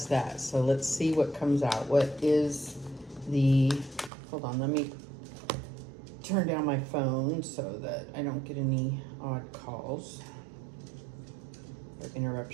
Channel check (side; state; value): left; drops out; at 4.1 s